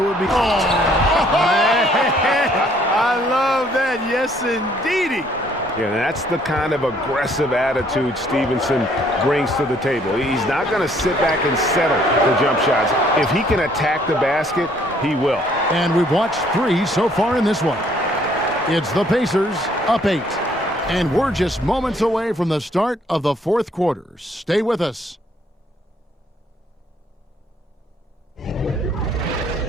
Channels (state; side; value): normal; both; correlation 0.64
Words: would be... I love that. Yes, indeedy. Yeah, that's the kind of aggressive attitude Stevenson brings to the table. He's not going to sit back and settle for jump shots. If he can attack the basket, he will. And we've watched 3 so far in this one. It's the Pacers up 8. And we're just moments away from the start of the 4th quarter. Stay with us.